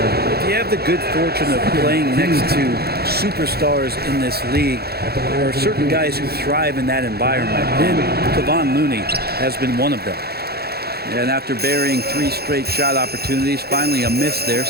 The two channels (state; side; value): late; left; 0.46 ms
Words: you have the good fortune of playing next to superstars in this league, there are certain guys who thrive in that environment. And Kevon Looney has been one of them. And after burying 3 straight shot opportunities, finally a miss there.